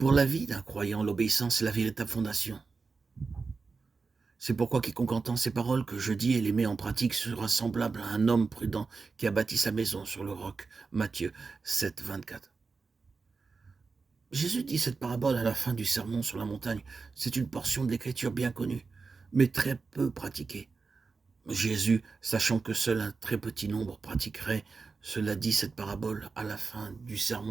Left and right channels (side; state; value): left; quieter; 4.5 dB